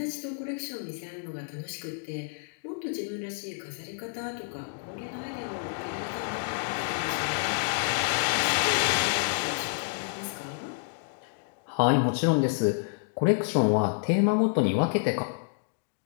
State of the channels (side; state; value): right; silent; digital silence